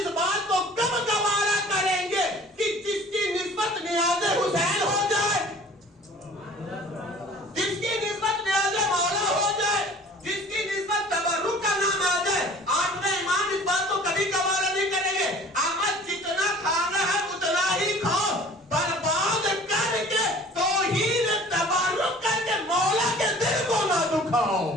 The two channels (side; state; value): both; normal; correlation 0.48